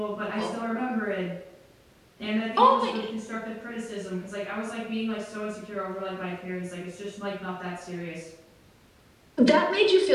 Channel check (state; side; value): identical; both; correlation 1.00